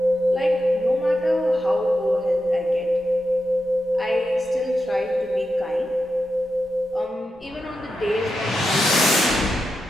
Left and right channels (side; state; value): both; normal; correlation 0.88